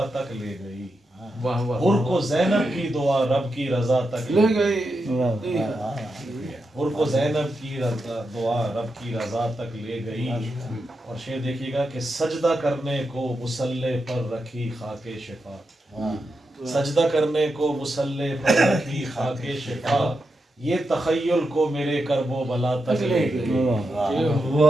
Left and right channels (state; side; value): normal; both; correlation 0.87